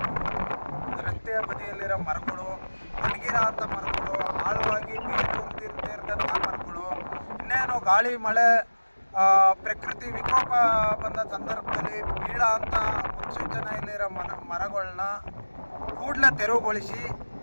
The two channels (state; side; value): inverted; both; correlation -1.00